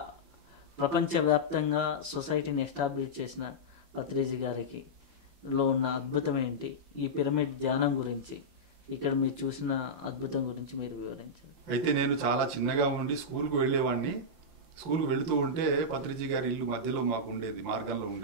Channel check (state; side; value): late; left; 5.8 ms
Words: ప్రపంచవ్యాప్తంగా సొసైటీని ఎస్టాబ్లిష్ చేసిన పత్రిజీ గారికి లో ఉన్న అద్భుతం ఏంటి? ఈ పిరమిడ్ ధ్యానం గురించి, ఇక్కడ మీరు చూసిన అద్భుతం గురించి మీరు వివరించారు. అయితే నేను చాలా చిన్నగా ఉండి స్కూల్కి వెళ్ళేవాడిని. స్కూల్కి వెళుతూ ఉంటే పత్రిజీ గారి ఇల్లు మధ్యలో మాకు ఉండేది, మార్గంలో